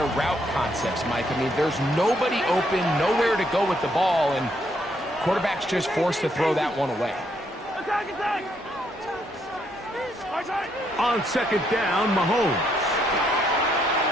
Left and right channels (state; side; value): normal; both; correlation 0.73